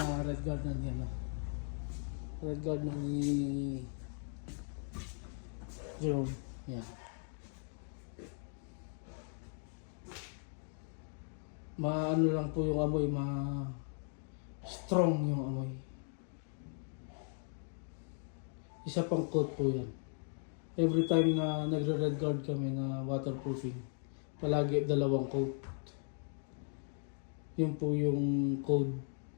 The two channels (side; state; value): right; silent; 53 dB below the other